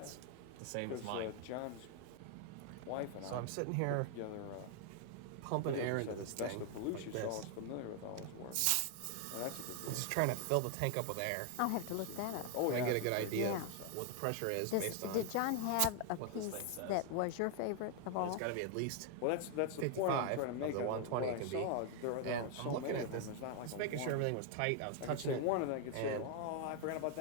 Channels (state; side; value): different; both; correlation 0.00